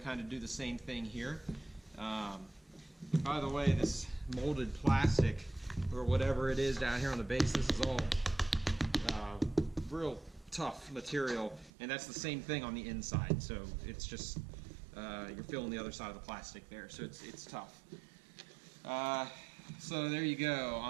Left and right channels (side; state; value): left; drops out; at 11.7 s